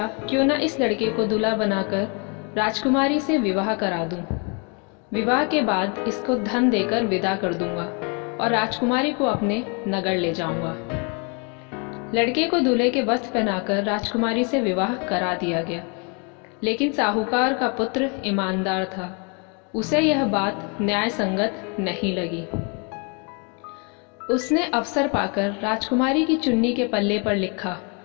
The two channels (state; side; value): quieter; right; 34.9 dB